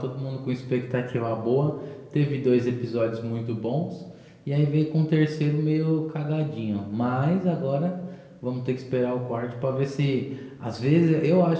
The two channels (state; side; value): identical; both; correlation 1.00